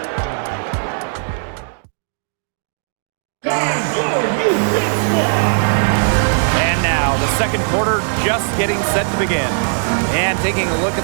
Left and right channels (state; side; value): silent; left; digital silence